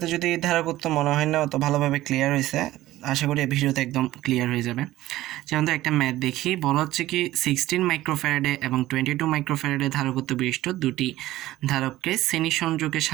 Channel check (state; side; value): quieter; left; 15.8 dB